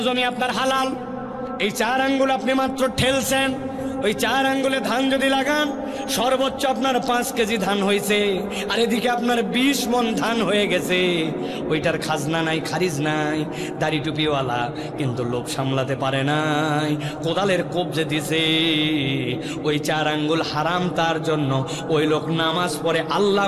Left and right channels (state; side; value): identical; both; correlation 1.00